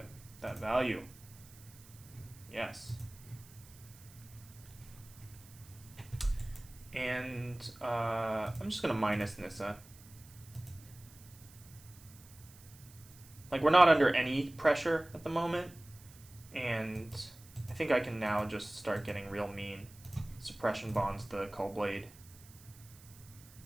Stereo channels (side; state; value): right; noise; hiss, 22 dB below the sound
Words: that value. Yes. And I'm just gonna minus Nissa. Like we're not under any pressure at the moment, and I think I can now just start getting real mean. Suppression bonds the Cull Blade.